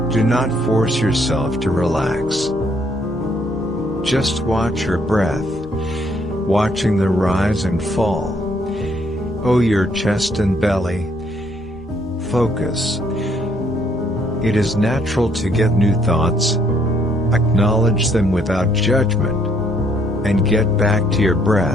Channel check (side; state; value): both; normal; correlation 0.68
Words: Do not force yourself to relax. Just watch your breath, watching the rise and fall. Oh, your chest and belly. Focus. It is natural to get new thoughts. Acknowledge them without judgment, and get back to your